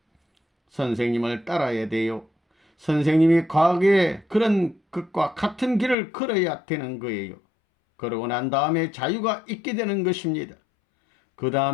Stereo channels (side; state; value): right; drops out; at 6.0 s